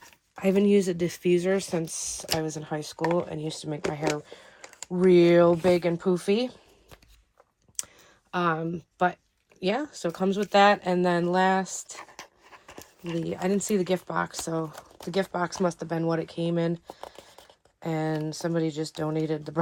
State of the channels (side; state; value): both; identical; correlation 1.00